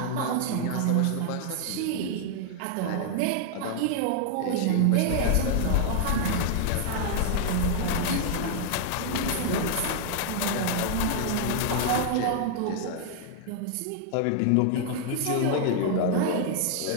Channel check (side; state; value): both; different; correlation 0.00